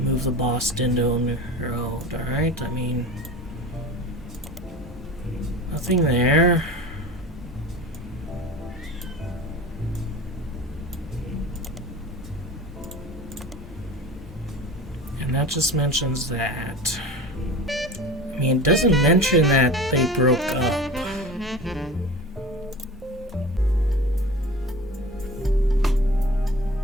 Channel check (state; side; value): normal; both; correlation 0.36